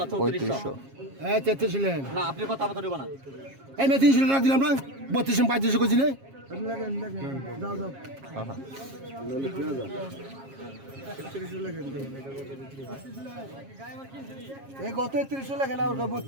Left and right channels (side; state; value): left; late; 7.4 ms